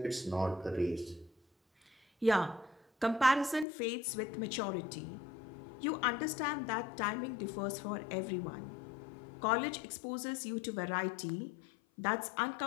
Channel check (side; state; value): right; drops out; at 3.7 s